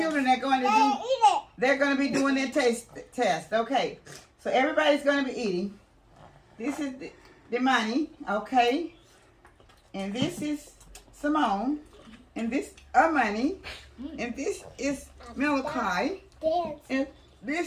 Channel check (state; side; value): identical; both; correlation 1.00